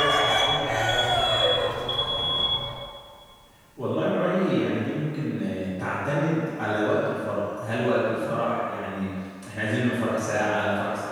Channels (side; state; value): both; identical; correlation 1.00